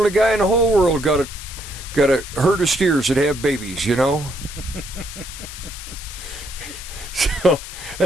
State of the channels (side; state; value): left; noise; hiss, 12 dB below the sound